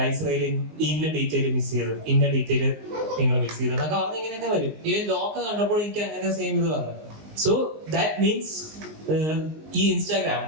ഇന്ന ഡീറ്റെയിൽ മിസ് ചെയ്തു, ഇന്ന ഡീറ്റെയിൽ നിങ്ങൾ മിസ് ചെയ്തു എന്നൊക്കെ പറഞ്ഞ് ഇങ്ങനെയൊക്കെ വരും. ഈ ലോക്ക് കണ്ടപ്പോൾ എനിക്ക് അങ്ങനെ സെയിം ഇത് വന്നു. സോ ദാറ്റ് മീൻസ് ഈ ഇൻസ്റ്റാഗ്രാം,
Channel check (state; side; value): late; left; 19 ms